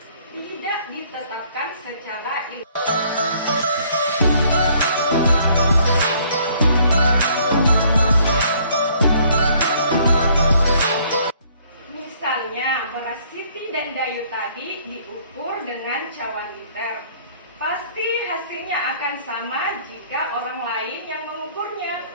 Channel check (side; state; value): both; inverted; correlation -0.61